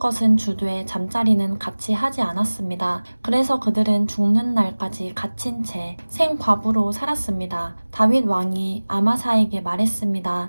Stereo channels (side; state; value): both; inverted; correlation -1.00